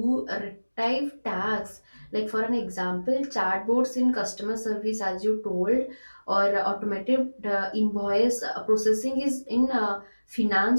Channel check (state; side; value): inverted; both; correlation -1.00